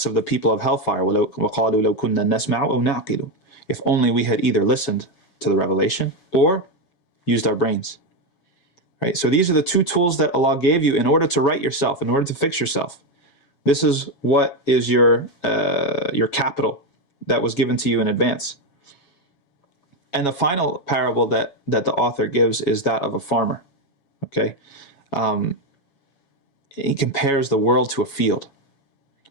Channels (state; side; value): late; right; 7.2 ms